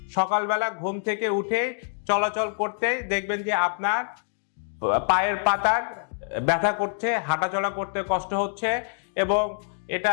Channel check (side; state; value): right; silent; digital silence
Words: সকালবেলা ঘুম থেকে উঠে চলাচল করতে দেখবেন যে আপনার পায়ের পাতার ব্যথা করছে, হাঁটাচলা করতে কষ্ট হচ্ছে এবং